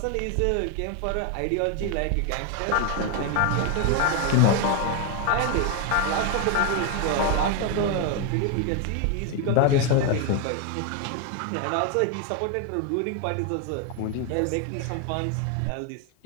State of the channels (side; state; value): both; different; correlation 0.01